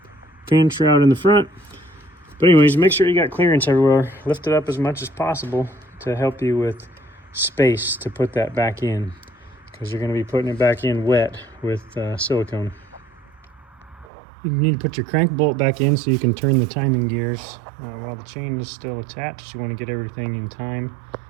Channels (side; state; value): left; drops out; at 14.1 s